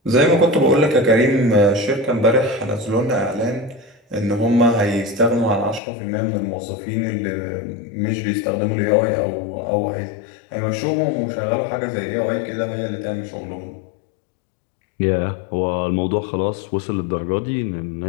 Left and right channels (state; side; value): drops out; right; at 5.8 s